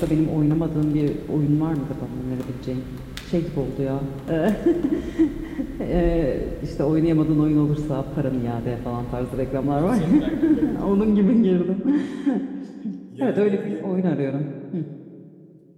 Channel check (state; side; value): identical; both; correlation 1.00